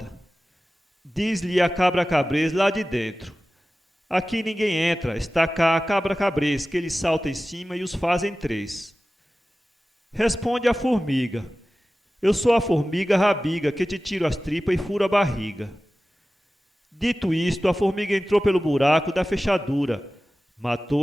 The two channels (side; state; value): both; normal; correlation 0.96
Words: Diz-lhe a cabra cabrez lá de dentro: "Aqui ninguém entra, está cá a cabra cabrez, que eles salta em cima e os fazem três." Responde a formiga: "Eu sou a formiga rabiga, que te tiro as tripas e furo a barriga." Dito isto, a formiga entrou pelo buraco da fechadura,